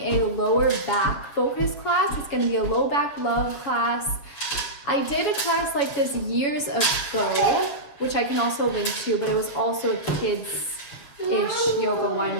lower back focus class. It's gonna be a low back love class. I did a class like this years ago, which I can also link to, but it was also a kids-ish yoga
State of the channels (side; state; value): right; late; 7.3 ms